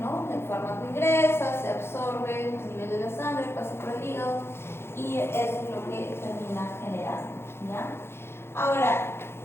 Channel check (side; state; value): right; late; 0.12 ms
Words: ¿no? El fármaco ingresa, se absorbe a nivel de la sangre, pasa por el hígado y eso es lo que termina generando, ¿ya? Ahora,